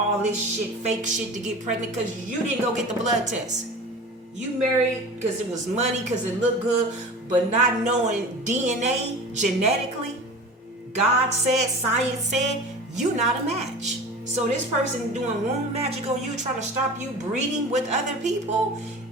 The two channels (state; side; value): normal; both; correlation 0.36